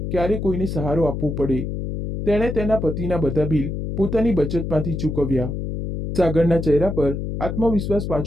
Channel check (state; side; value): noise; left; hum, 4 dB below the sound